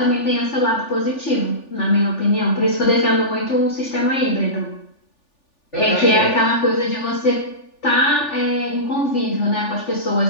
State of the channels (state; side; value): late; right; 3.4 ms